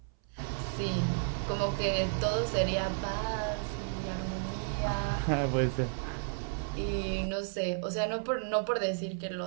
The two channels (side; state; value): left; silent; 56 dB below the other